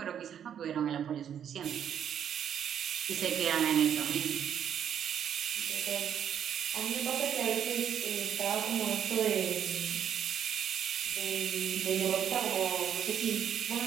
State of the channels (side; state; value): left; quieter; 9.0 dB